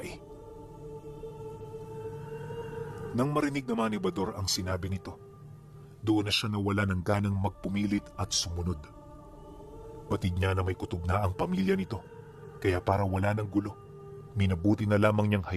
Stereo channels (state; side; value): identical; both; correlation 1.00